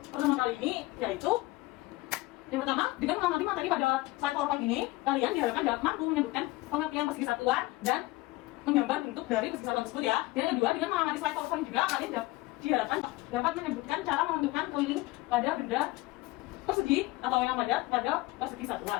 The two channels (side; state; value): right; quieter; 20.2 dB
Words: pertemuan kali ini yaitu yang pertama, dengan mengamati materi pada slide PowerPoint ini, kalian diharapkan dapat mampu menyebutkan pengertian persegi satuan dan menggambar bentuk dari persegi satuan tersebut ya. Dan yang kedua, dengan mengamati slide PowerPoint juga kalian diharapkan dapat menyebutkan cara menentukan keliling pada benda persegi atau yang pada persegi satuan.